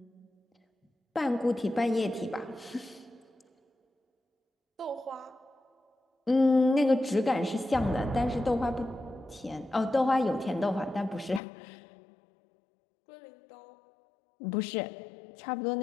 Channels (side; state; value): right; drops out; at 11.4 s